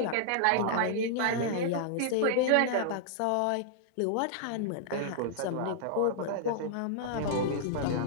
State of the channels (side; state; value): both; different; correlation -0.01